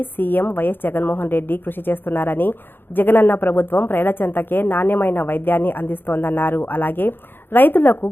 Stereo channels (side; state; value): right; late; 0.10 ms